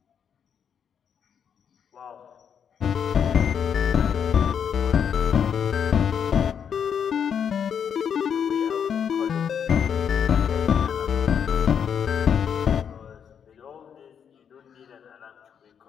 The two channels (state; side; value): quieter; right; 7.8 dB